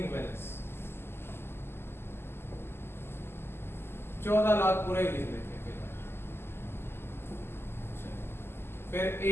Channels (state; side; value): late; right; 0.12 ms